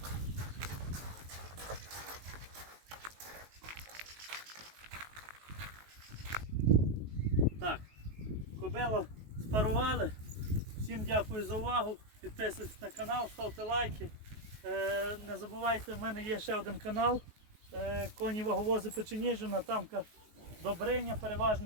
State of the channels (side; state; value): left; late; 19 ms